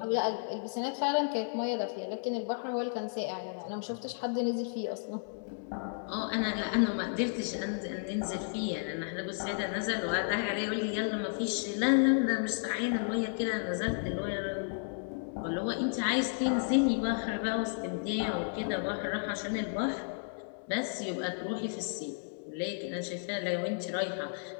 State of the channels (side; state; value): right; silent; digital silence